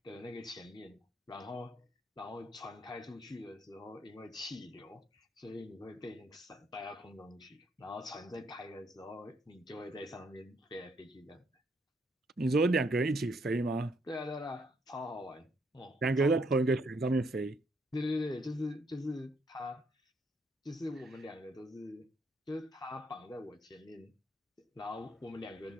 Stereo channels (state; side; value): normal; both; correlation 0.71